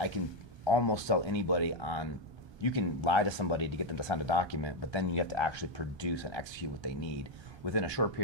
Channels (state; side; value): late; left; 1.3 ms